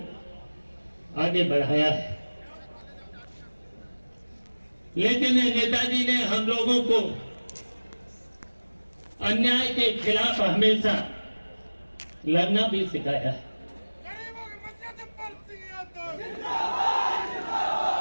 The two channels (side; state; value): both; inverted; correlation -1.00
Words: आगे बढ़ाया है। लेकिन नेताजी ने हम लोगों को अन्याय के खिलाफ हमेशा लड़ना भी सिखाया है।